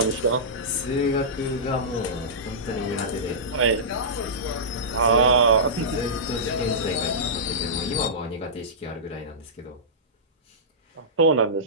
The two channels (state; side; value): normal; both; correlation -0.17